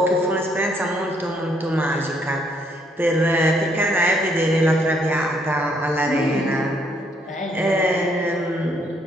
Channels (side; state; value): both; normal; correlation 0.70